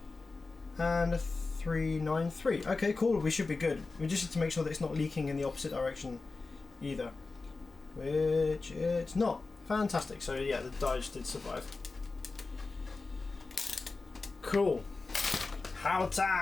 and 393. Okay, cool, we should be good. We just need to make sure that it's not leaking in the opposite direction either, which it's not. Fantastic. So yeah, the diodes did survive. Cool. How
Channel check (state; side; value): quieter; right; 3.8 dB